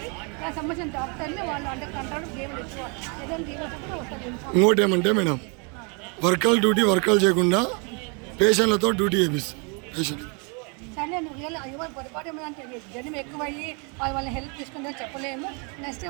దానికి సంబంధించిన డాక్టర్ని వాళ్ళు అండర్ కంట్రోల్ గేమ్లు ఇచ్చుకోవాలి. ఏదైనా దీనిలో వస్తుంది. ఇంకోటి ఏమంటే మేడం, వర్కలు చేయకుండా పేషెంట్లతో డ్యూటీ చేపిస్తాం. పేషెంట్ సరే నువ్వు ఎవరు పొరపాటు ఏమంటే జనం ఎక్కువయ్యి వాళ్ళ హెల్ప్ తీసుకుందని చెప్పలేము. నెక్స్ట్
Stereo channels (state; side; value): quieter; left; 34.8 dB